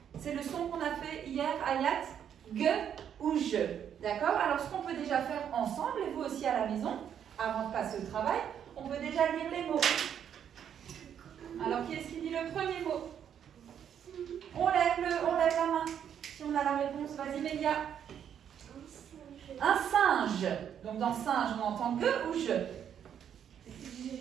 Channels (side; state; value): left; quieter; 8.9 dB